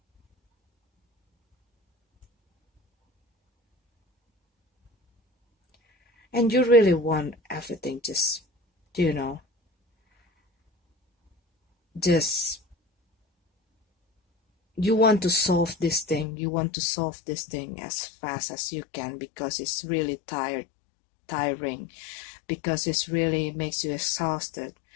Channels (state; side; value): drops out; right; at 16.2 s